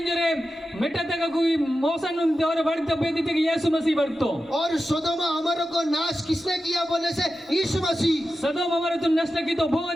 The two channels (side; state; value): both; normal; correlation 0.92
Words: मेटा तक कोई मौसन उन देवरे बढ़ते बेदी थे कि यीशु मसीह बढ़तो और सोदोम अमोरा को नाश किसने किया बोलने से? यीशु मसीह। सदोम हमारे तुम नष्ट की तो वो